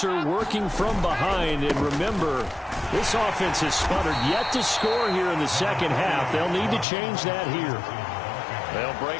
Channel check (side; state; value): right; drops out; at 6.9 s